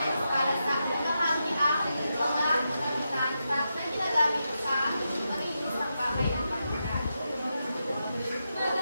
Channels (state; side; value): inverted; both; correlation -0.87